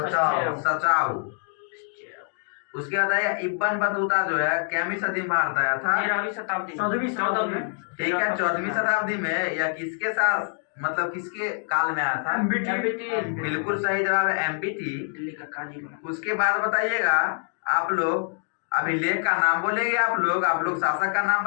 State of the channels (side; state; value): right; silent; 57 dB below the other